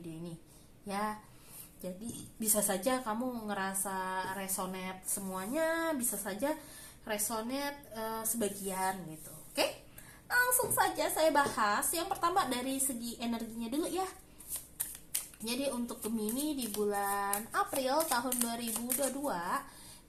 ini ya. Jadi bisa saja kamu ngerasa resonate semuanya, bisa saja resonate sebagian gitu. Oke, langsung saja saya bahas. Yang pertama dari segi energinya dulu ya. Jadi untuk Gemini di bulan April tahun 2022,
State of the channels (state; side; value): identical; both; correlation 1.00